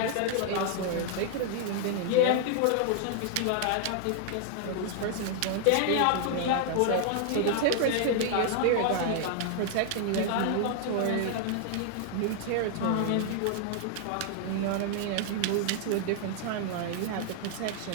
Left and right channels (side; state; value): both; different; correlation -0.01